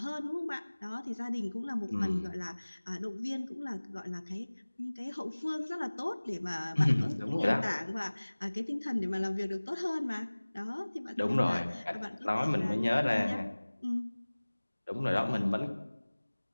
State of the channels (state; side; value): inverted; both; correlation -1.00